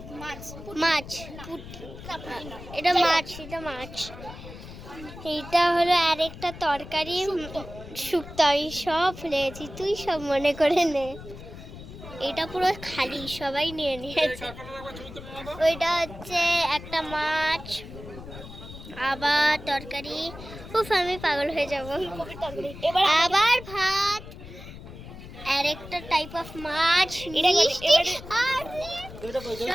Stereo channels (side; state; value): left; noise; rumble, 14 dB below the sound